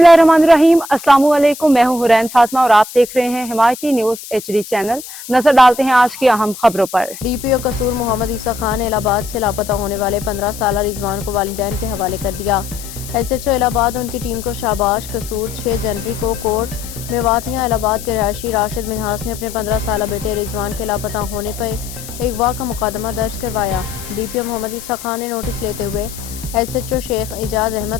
السلام علیکم، میں ہوں حرین فاطمہ اور آپ دیکھ رہے ہیں حمایتی نیوز HD چینل۔ نظر ڈالتے ہیں آج کی اہم خبروں پر۔ ڈی پی او قصور محمد عیسیٰ خان نے الہ آباد سے لاپتہ ہونے والے 15 سالہ رضوان کو والدین کے حوالے کر دیا۔ SHO الہ آباد ان کی ٹیم کو شاباش۔ قصور 6 جنوری کو کورٹ میواتیاں الہ آباد کے رہائشی راشد منہاس نے اپنے 15 سالہ بیٹے رضوان کے لاپتہ ہونے پر اغوا کا مقدمہ درج کروایا۔ ڈی پی او محمد عیسیٰ خان نے نوٹس لیتے ہوئے SHO شیخ اعجاز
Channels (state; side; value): noise; left; hiss, 13 dB below the sound